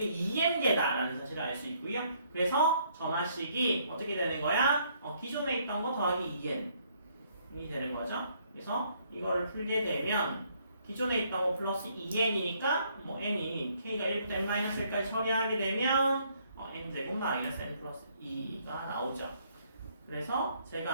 2n개다라는 사실을 알 수 있고요. 그래서 전화식이 어떻게 되는 거야? 기존에 있던 거 더하기 2n이 되는 거죠. 그래서 이거를 풀게 되면 기존에 있던 거 플러스 2n이니까 n이 k가 1부터 n-1까지 처리하게 되면 n제곱 마이너스 n 플러스 2가 나오죠. 그래서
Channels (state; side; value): inverted; both; correlation -0.68